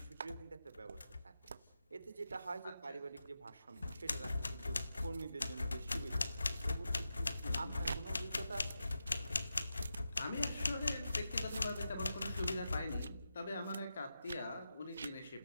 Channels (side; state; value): both; inverted; correlation -0.89